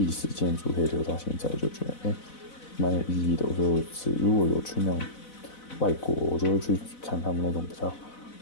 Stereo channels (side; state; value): right; late; 4.0 ms